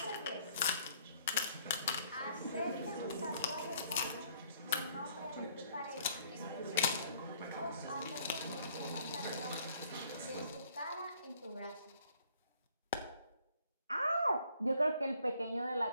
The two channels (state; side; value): inverted; both; correlation -0.62